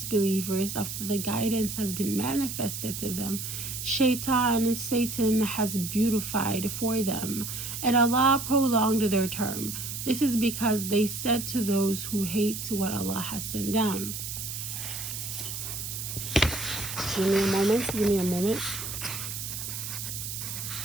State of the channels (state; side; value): noise; right; hiss, 6 dB below the sound